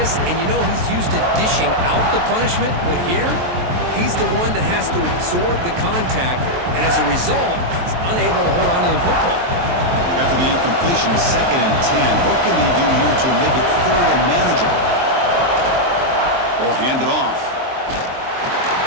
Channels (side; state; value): left; late; 23 ms